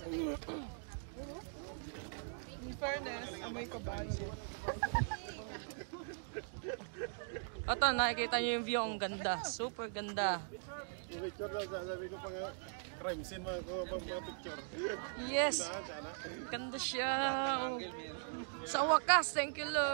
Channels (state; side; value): silent; left; digital silence